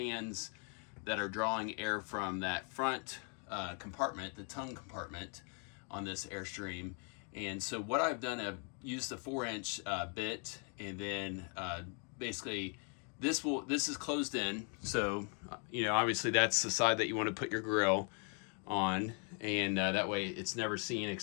that are drawing air from that front compartment, the tongue compartment on this Airstream. And so what I've done, I've used the 4-inch bit, and then basically this is closed in. So you know, obviously that's the side that you want to put your grill on, and that way it's never seen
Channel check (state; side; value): quieter; right; 39.8 dB